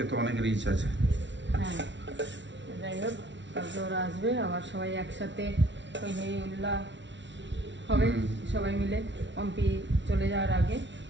তো অনেক রিচ আছে। হ্যাঁ যাই হোক, কালকে ওরা আসবে, আবার সবাই একসাথে উল্লাহ হবে সবাই মিলে, পম্পি চলে যাওয়ার আগে।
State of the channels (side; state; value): left; late; 0.53 ms